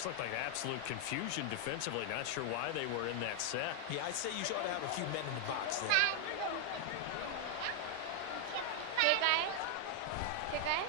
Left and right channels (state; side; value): different; both; correlation 0.00